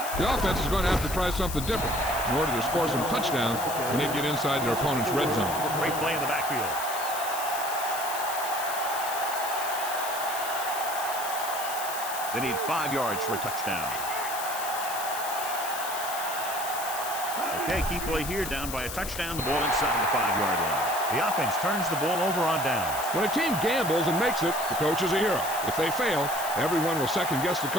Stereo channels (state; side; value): noise; left; hiss, 8 dB below the sound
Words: The offense is going to have to try something different in order to score some touchdowns when they get inside their opponent's red zone. Great play in the backfield. They need 5 yards for a touchdown. Okay, key play here, down by a touchdown, the ball inside the 5-yard line. The offense turns the ball over on downs. When a team gambles and makes it, the coach is a hero. If they fail, everyone will second-guess the